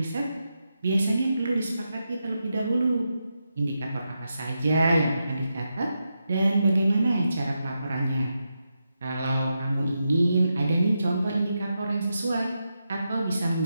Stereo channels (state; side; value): inverted; both; correlation -0.86